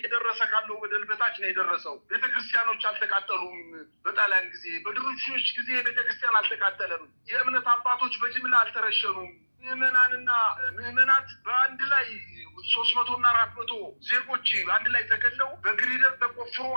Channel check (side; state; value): both; inverted; correlation -1.00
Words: ካለው በደል በታች ነው የደረሰው። ቤተክርስቲያኖች አልተቃጠሉም። በጣሊያን ጊዜ በድርቡሾች ጊዜ ቤተክርስቲያን አልተቃጠለም። የእምነት አባቶች በጅምላ አልተረሸኑም። ምዕመናት በአንድ ላይ 300 እና 400 ዜጎች አንድ ላይ ተገለው በግሪደር ተቆፍሮ